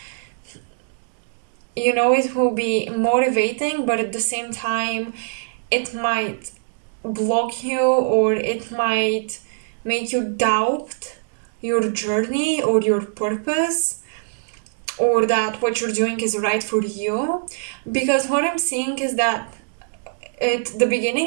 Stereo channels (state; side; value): silent; left; 64 dB below the other